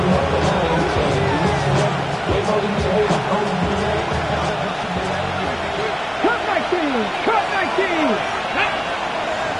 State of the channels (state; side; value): identical; both; correlation 1.00